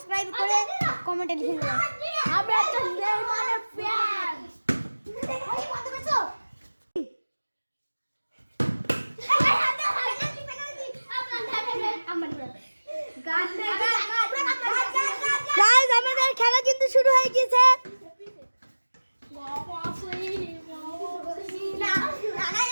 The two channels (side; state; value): both; inverted; correlation -1.00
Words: করে কমেন্টে লিখে দিও। আমি একটা নেইমারের ফ্যান। ওই কত বেছো? গাইস আমাদের খেলা কিন্তু শুরু হয়ে গেছে।